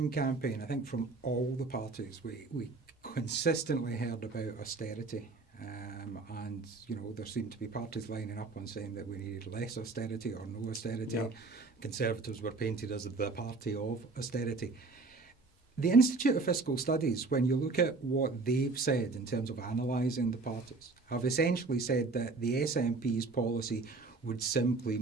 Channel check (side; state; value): left; quieter; 3.8 dB